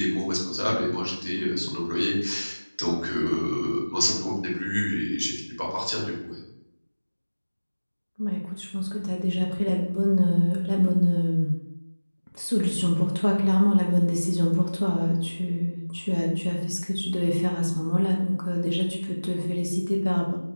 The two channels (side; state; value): both; inverted; correlation -1.00